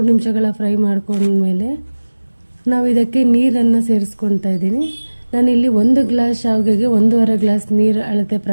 ನಿಮಿಷಗಳ ಫ್ರೈ ಮಾಡ್ಕೊಂಡ್ಮೇಲೆ ನಾವು ಇದಕ್ಕೆ ನೀರನ್ನು ಸೇರಿಸ್ಕೊತಾ ಇದ್ದೀನಿ. ನಾನಿಲ್ಲಿ 1 ಗ್ಲಾಸ್ ಶಾವಿಗೆಗೆ 1.5 ಗ್ಲಾಸ್ ನೀರು ಅಳತೆ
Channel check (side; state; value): both; inverted; correlation -1.00